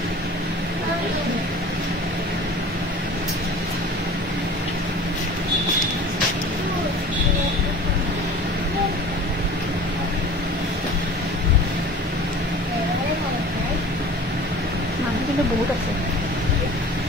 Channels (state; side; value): normal; both; correlation 0.40